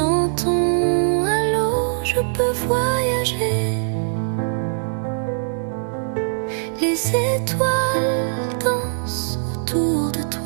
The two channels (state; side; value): silent; left; 65 dB below the other